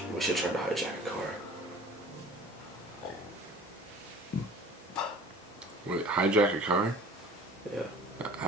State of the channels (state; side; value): normal; both; correlation 0.46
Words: We should try to hijack a car. Wait, hijack a car? Yeah.